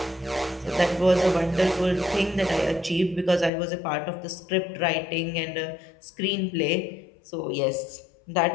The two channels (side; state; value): right; drops out; at 3.5 s